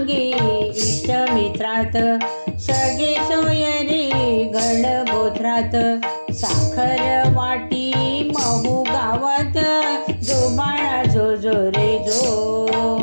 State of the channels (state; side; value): inverted; both; correlation -1.00